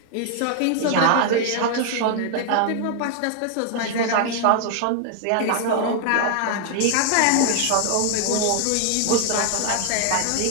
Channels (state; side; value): different; both; correlation 0.00